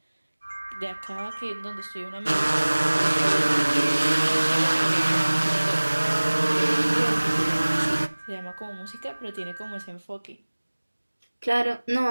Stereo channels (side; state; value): both; inverted; correlation -1.00